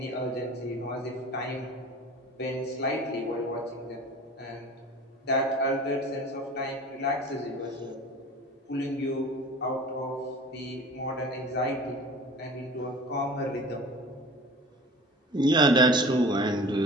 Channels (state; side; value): normal; both; correlation 0.40